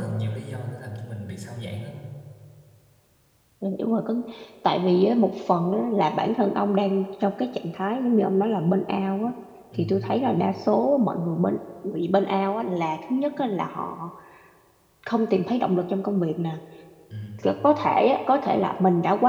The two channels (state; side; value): identical; both; correlation 1.00